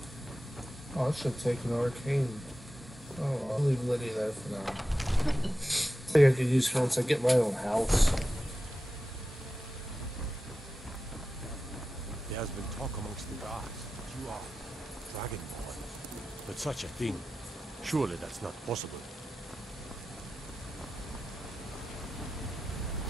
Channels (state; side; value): normal; both; correlation 0.93